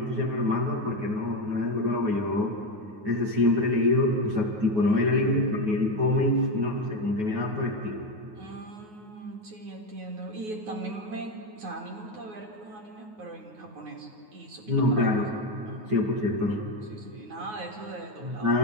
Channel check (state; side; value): late; left; 9.4 ms